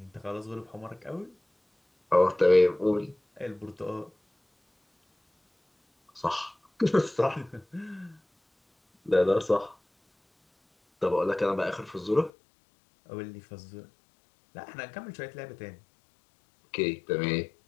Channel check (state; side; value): drops out; right; at 12.3 s